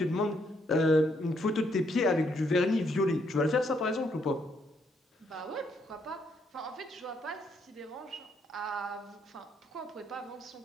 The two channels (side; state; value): both; normal; correlation 0.73